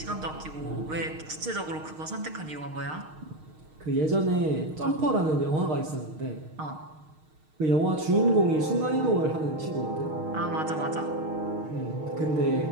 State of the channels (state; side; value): late; left; 6.5 ms